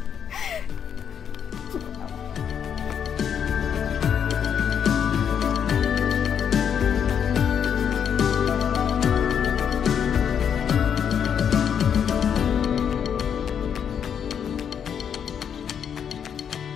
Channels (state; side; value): quieter; right; 8.0 dB